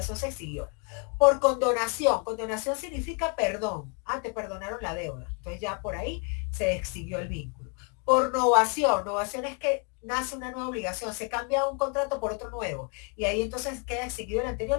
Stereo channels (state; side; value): quieter; right; 38.7 dB